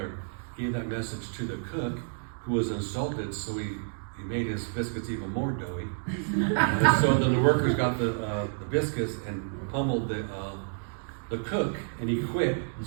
gave that message to the cook, who was insulted, so he made his biscuits even more doughy. And so then the workers got the biscuits and pummeled the cook, and he quit.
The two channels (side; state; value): left; silent; digital silence